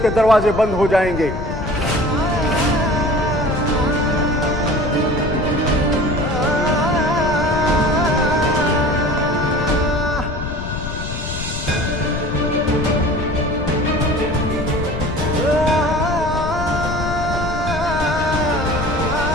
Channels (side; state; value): left; noise; rumble, 6 dB below the sound